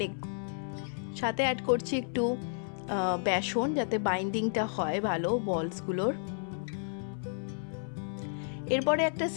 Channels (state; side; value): silent; right; 56 dB below the other